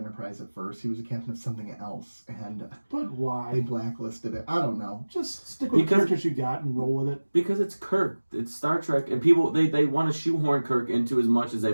at first? He was a captain of something else, and but why? they blacklisted it. I don't know. Just stick with the characters you got and roll with it. Because it's Kirk. It's Star Trek, and people they want to shoehorn Kirk into as much as they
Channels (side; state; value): both; inverted; correlation -1.00